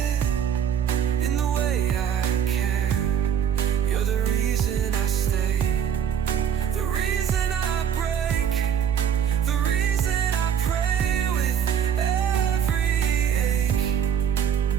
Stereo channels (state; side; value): quieter; left; 8.5 dB